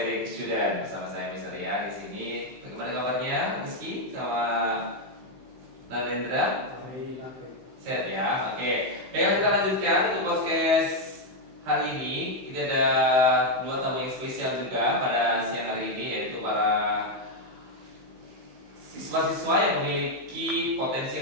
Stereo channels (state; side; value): late; left; 16 ms